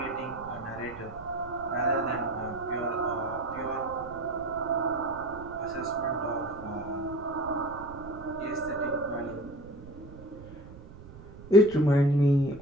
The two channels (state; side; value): noise; right; rumble, 16 dB below the sound